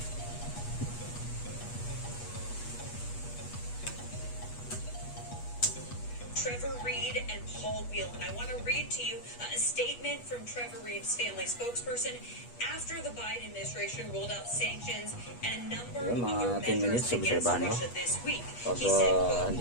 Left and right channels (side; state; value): right; late; 8.3 ms